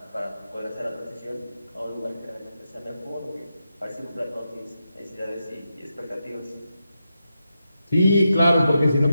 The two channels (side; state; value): both; inverted; correlation -0.87